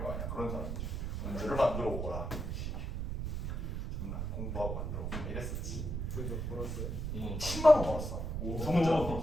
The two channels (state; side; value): noise; right; rumble, 3 dB below the sound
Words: 거 아니야. 그런 사람이지. 문제를 만들어 오거라. 정말 공부하고 만들어 오고 이랬었지. 그래서 벌었어요. 10만 원 벌었어. 두 문제.